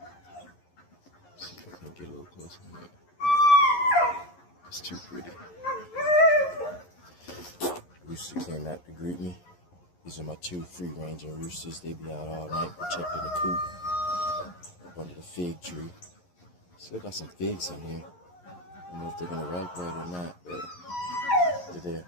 Let's see if I can get a little closer. It's too pretty. Rooster came out to greet me. These are my two free-ranging roosters. They be out all night protecting the coop up under the fig tree. Still got some figs in here. I don't know if they're gonna ripe right or not, but they're there.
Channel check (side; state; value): right; late; 11 ms